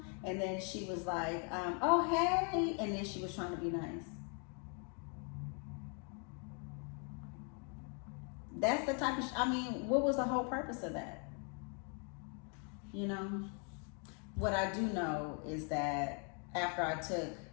and then she was like, "Oh, hey," and then she was trying to be nice. That's the type of, I mean, what was the whole purpose of that? You know? What I do know is that after I took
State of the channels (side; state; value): right; quieter; 38.9 dB